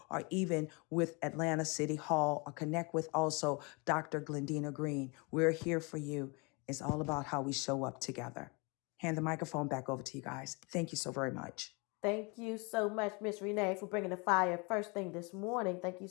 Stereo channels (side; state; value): right; quieter; 30.1 dB